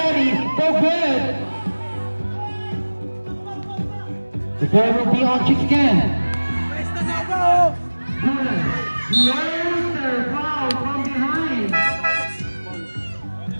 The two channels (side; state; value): both; inverted; correlation -1.00